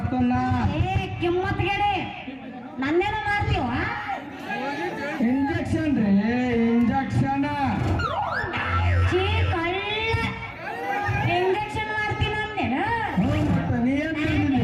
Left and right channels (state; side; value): identical; both; correlation 1.00